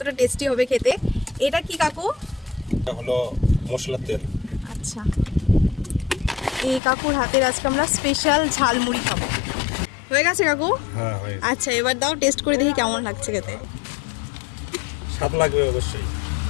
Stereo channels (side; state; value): right; drops out; at 6.8 s